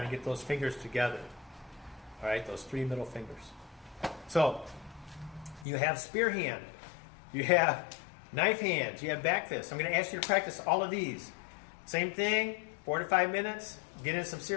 to get those fingers together, all right? Those 3 middle fingers. So you have spear hand, you have knife hands, you have back fist. I'm going to ask you to practice all of these. Same thing, 4 to 5 minutes. Get in some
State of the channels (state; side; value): drops out; right; at 5.7 s